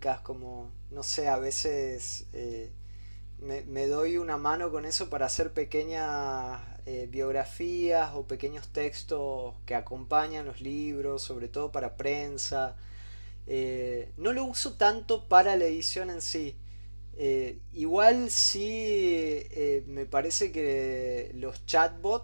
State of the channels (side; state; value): both; inverted; correlation -1.00